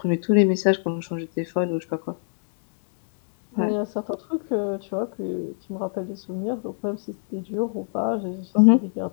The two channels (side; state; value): right; silent; digital silence